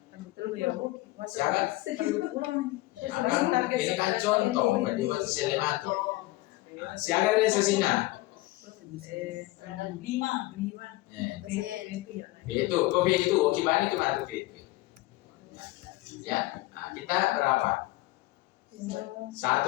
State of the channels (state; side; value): quieter; right; 19.1 dB